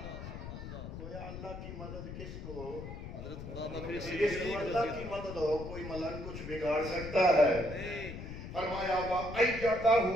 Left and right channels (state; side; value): noise; left; rumble, 9 dB below the sound